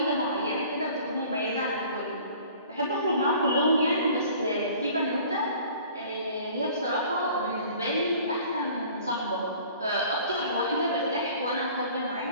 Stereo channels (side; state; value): both; inverted; correlation -0.49